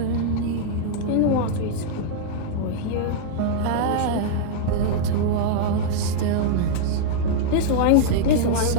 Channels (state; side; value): different; both; correlation -0.01